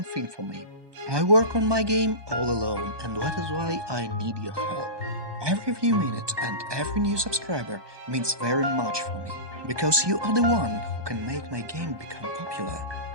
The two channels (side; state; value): left; late; 1.2 ms